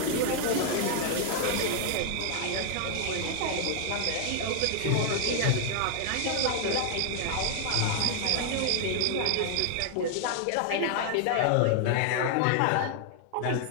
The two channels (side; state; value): both; different; correlation 0.00